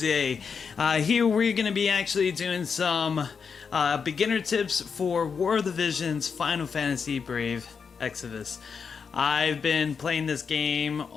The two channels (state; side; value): quieter; right; 6.0 dB